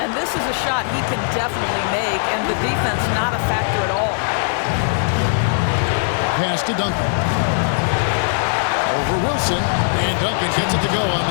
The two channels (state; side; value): silent; right; digital silence